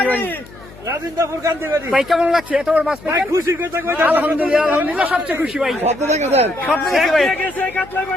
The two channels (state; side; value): noise; left; hum, 20 dB below the sound